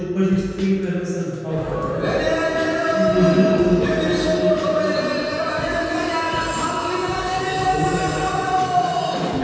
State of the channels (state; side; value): identical; both; correlation 1.00